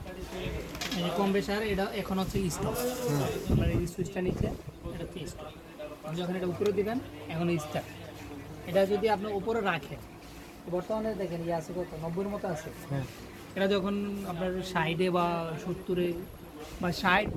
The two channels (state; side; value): identical; both; correlation 1.00